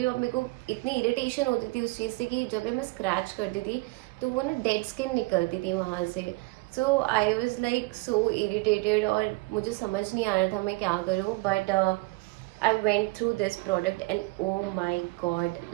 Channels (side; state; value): left; quieter; 24.0 dB